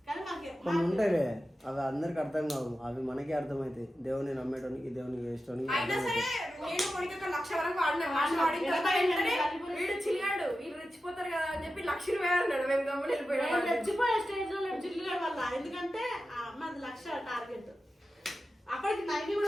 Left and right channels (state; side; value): normal; both; correlation 0.92